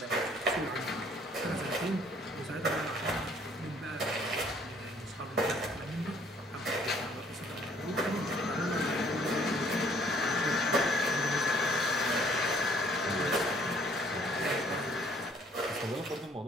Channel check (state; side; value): normal; both; correlation 0.61